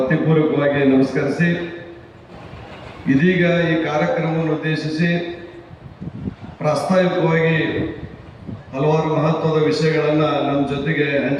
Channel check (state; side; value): identical; both; correlation 1.00